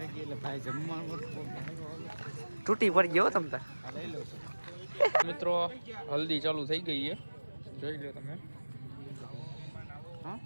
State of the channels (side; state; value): both; inverted; correlation -1.00